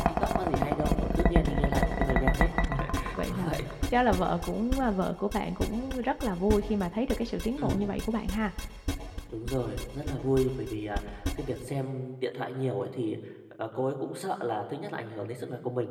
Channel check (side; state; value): both; identical; correlation 1.00